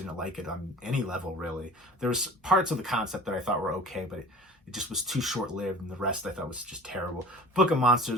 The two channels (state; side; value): normal; both; correlation 0.41